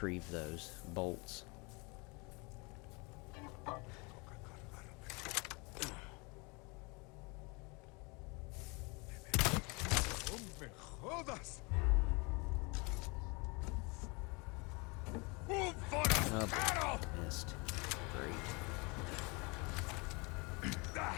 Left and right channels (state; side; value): quieter; right; 28.9 dB